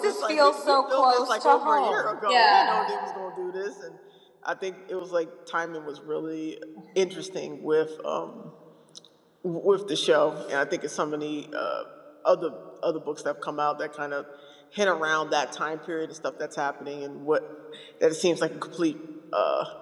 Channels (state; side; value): identical; both; correlation 1.00